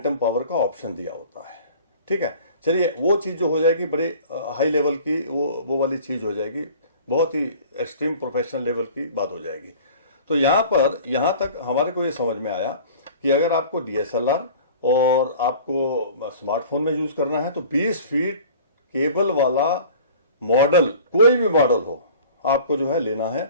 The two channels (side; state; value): both; inverted; correlation -0.45